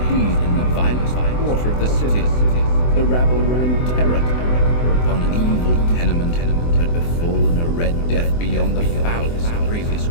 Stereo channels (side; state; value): right; late; 24 ms